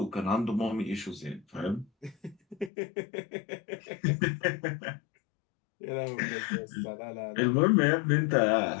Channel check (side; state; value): right; drops out; at 2.7 s